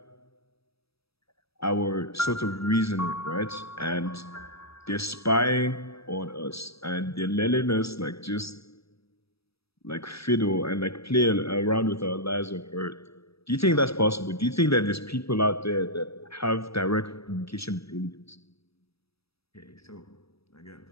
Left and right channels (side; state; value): right; late; 0.77 ms